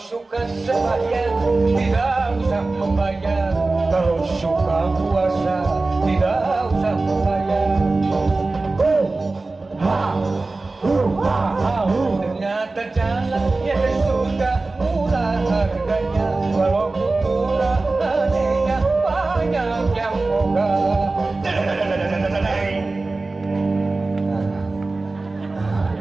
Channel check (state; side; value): quieter; left; 3.4 dB